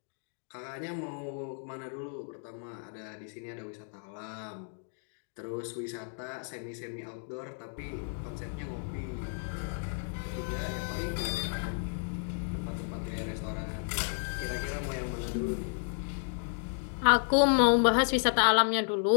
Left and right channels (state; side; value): silent; right; 56 dB below the other